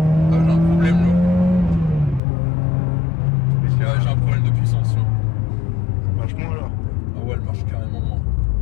J'ai un problème là. J'ai un problème de puissance. Ça marche moins alors. Ah ouais, elle marche carrément moins.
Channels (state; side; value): drops out; right; at 2.2 s